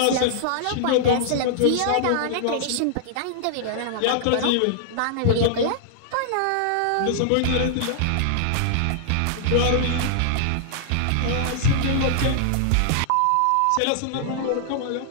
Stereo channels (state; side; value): different; both; correlation -0.01